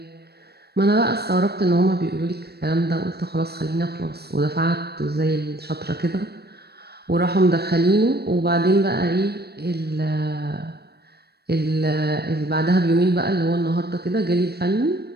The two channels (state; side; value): late; left; 0.47 ms